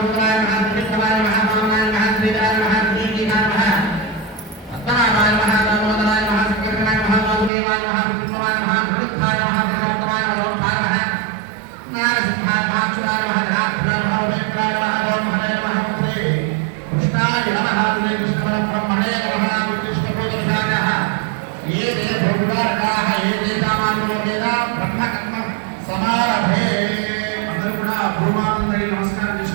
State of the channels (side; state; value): left; drops out; at 7.5 s